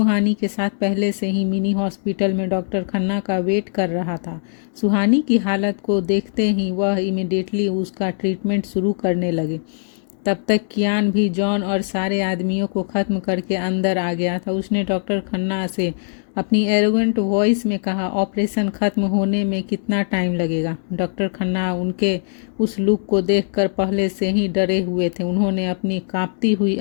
के साथ पहले से ही मिनी हॉस्पिटल में डॉक्टर खन्ना का वेट कर रहा था। सुहानी की हालत को देखते ही वह इमिडिएटली उसका ट्रीटमेंट शुरू करने लगे। तब तक कियान भी जॉन और सारे आदमियों को ख़त्म करके अंदर आ गया था। उसने डॉक्टर खन्ना से अपनी एरोगेंट वॉइस में कहा, ऑपरेशन ख़त्म होने में कितना टाइम लगेगा? डॉक्टर खन्ना उनके उस लुक को देखकर पहले से ही डरे हुए थे। उन्होंने अपनी कांपती हुई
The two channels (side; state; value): right; silent; digital silence